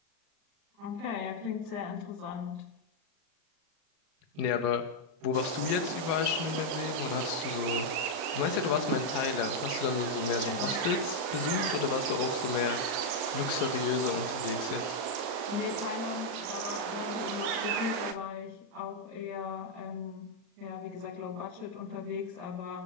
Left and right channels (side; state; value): left; late; 39 ms